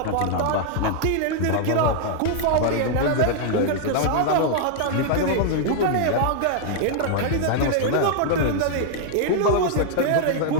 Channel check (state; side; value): different; both; correlation 0.00